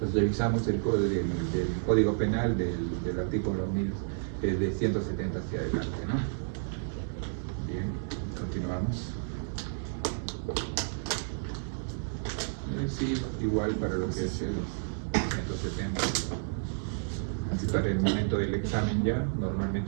revisamos el del Código Penal del artículo 1000, de 170 hacia adelante, ¿no? Bien, continuamos. Sí, igual para lo que es el 170. Así para el momento del examen ya,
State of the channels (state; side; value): silent; left; digital silence